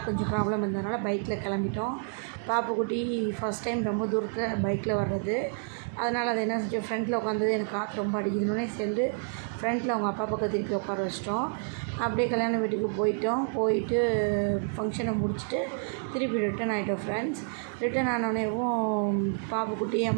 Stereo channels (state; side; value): silent; left; 56 dB below the other